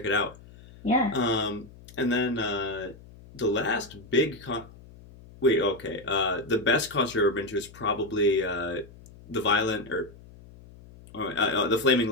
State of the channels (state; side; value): noise; left; hum, 21 dB below the sound